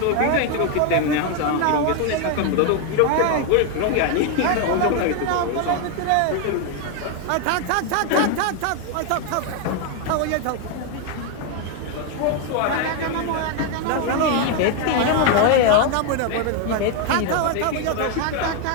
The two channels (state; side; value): different; both; correlation 0.01